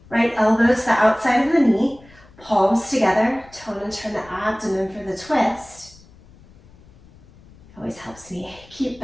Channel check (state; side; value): noise; left; rumble, 25 dB below the sound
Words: right elbow to the outside of the knee, palms together, tone and turn the abdomen for the twist. Always helps me keep